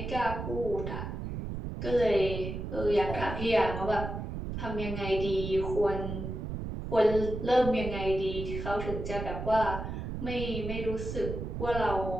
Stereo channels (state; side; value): noise; right; rumble, 5 dB below the sound